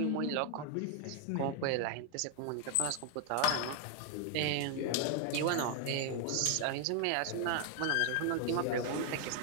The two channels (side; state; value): both; different; correlation 0.00